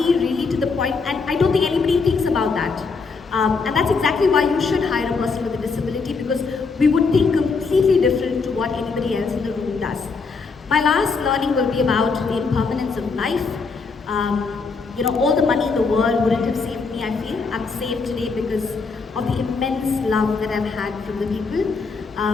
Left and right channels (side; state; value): right; quieter; 4.6 dB